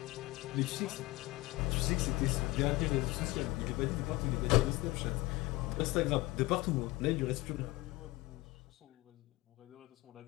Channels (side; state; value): right; quieter; 20.2 dB